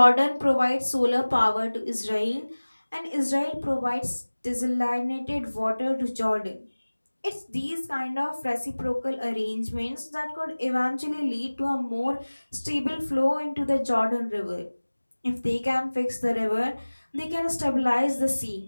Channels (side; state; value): both; inverted; correlation -1.00